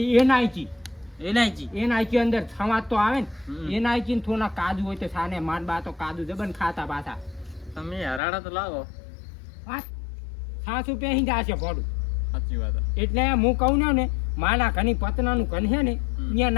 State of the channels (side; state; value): right; drops out; at 8.2 s